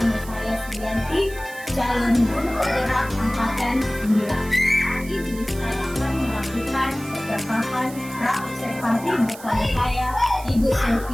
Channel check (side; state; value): right; noise; hiss, 17 dB below the sound